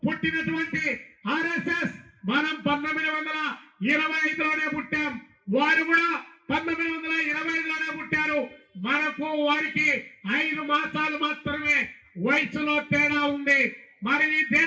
పుట్టినటువంటి ఆర్ఎస్ఎస్ మనం 1925లోనే పుట్టాం, వారు కూడా 1925లోనే పుట్టారు. మనకు వారికి 5 మాసాలు మాత్రమే వయసులో తేడా ఉంది. మరి ఈ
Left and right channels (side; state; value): both; identical; correlation 1.00